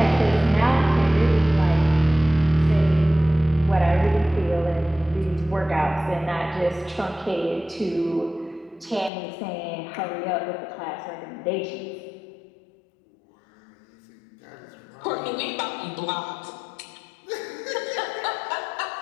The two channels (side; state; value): right; drops out; at 9.1 s